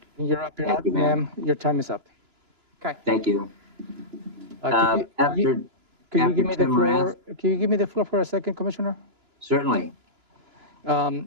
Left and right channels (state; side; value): late; left; 2.9 ms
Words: You're up, Thank you, ma'am. Your time is up. Okay. Thank you. Can you give me the Tim floor? Can you give me the floor for a second, Commissioner? Certainly.